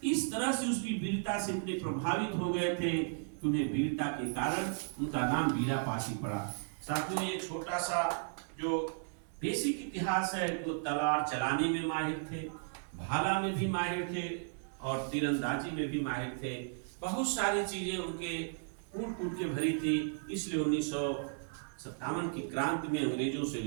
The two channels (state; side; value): silent; left; 55 dB below the other